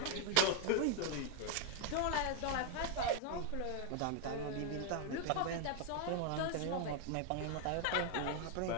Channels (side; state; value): both; different; correlation 0.01